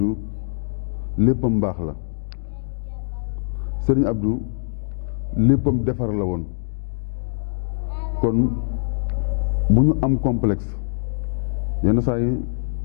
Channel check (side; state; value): right; silent; digital silence